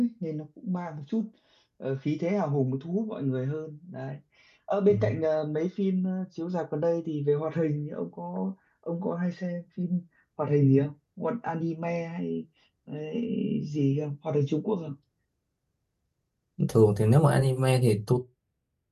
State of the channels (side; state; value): both; identical; correlation 1.00